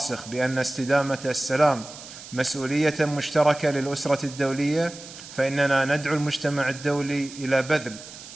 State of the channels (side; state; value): right; noise; hiss, 15 dB below the sound